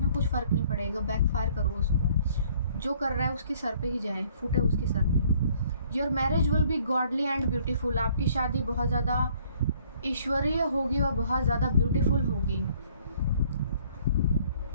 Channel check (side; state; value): both; inverted; correlation -0.60